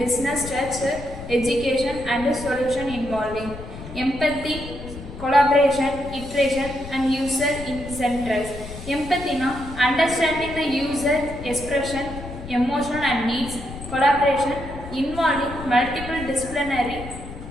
structure, education, and solution involving empathy, collaboration, iteration, and user incentives. Empathy, now understanding the user expression, emotion, and needs. Collaboration involving multiple disciplinary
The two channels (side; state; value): left; noise; rumble, 12 dB below the sound